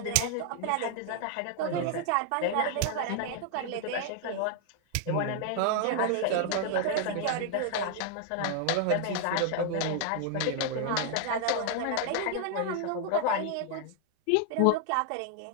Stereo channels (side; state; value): both; different; correlation 0.00